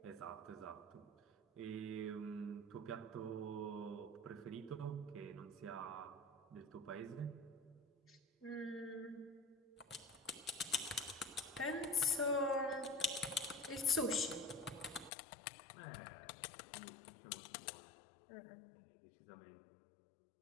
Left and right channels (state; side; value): drops out; right; at 15.1 s